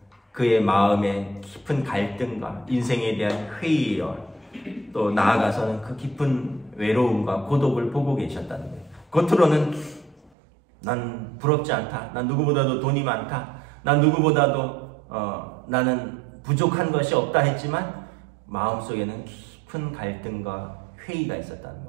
그의 마음의 깊은 갈등과 인생에 대한 회의와 또 나아가서는 그 깊은 외로움과 고독을 보고 계셨다는 거예요. 겉으로는 난 부럽지 않다. 난 누구보다도 돈이 많다. 난 누구보다도 나는 부족한 것이 없다 했지만 마음속에는 깊은 갈등과 회의가 있었다는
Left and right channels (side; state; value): left; drops out; at 10.3 s